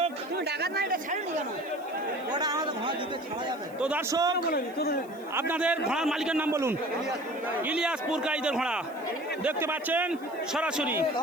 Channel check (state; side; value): noise; right; hiss, 26 dB below the sound